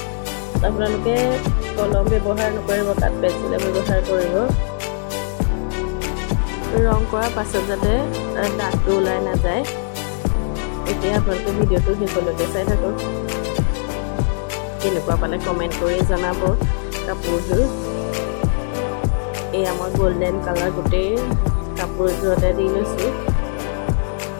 আপোনালোকে কলম ব্যৱহাৰ নকৰিব, কাট পেঞ্চিলে ব্যৱহাৰ কৰিব। ৰং কৰাৰ পাছত যাতে দাগটো ওলাই নাযায়। এতিয়া আপোনালোকে ভিডিঅ'টো শেষলৈকে চাই থাকক। কেনেকুৱা পালে কমেণ্ট কৰি জনাব কাপোৰযোৰ। এয়া মই গল্ডেন কালাৰ গোটেই কাপোৰযোৰতে দি লৈছোঁ।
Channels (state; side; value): silent; right; 66 dB below the other